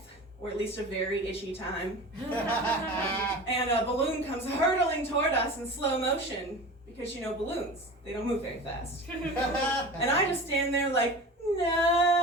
or at least a very itchy time. And a balloon comes hurtling toward us in slow motion, because you know balloons, they don't move very fast. And I just stand there like, no!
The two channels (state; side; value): normal; both; correlation 0.34